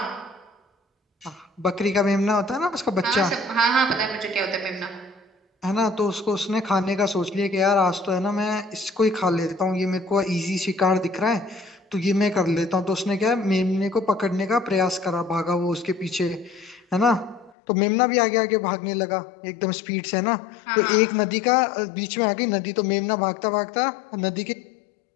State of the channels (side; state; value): right; drops out; at 17.5 s